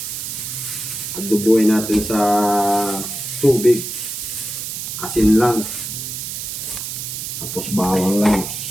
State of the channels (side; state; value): right; noise; hiss, 6 dB below the sound